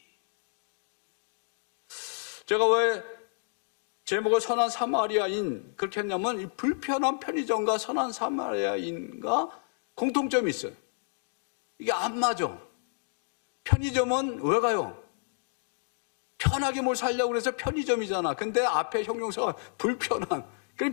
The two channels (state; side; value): silent; right; digital silence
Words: 제가 왜 제목을 선한 사마리아인 그렇게 했냐면 이 불편한 편의점과 선한 사마리아인과 공통점이 있어요. 이게 안 맞아. 편의점은 왜 가요? 편하게 뭘 살려고 그래서 편의점이잖아. 근데 앞에 형용사가 불편한. 그게